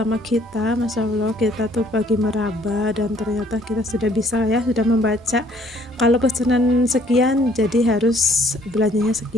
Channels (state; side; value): normal; both; correlation 0.61